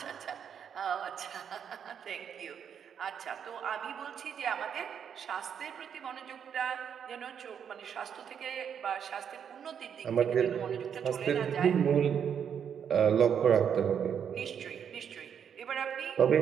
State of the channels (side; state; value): left; quieter; 7.9 dB